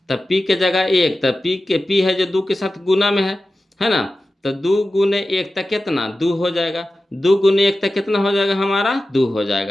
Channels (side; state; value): both; normal; correlation 0.94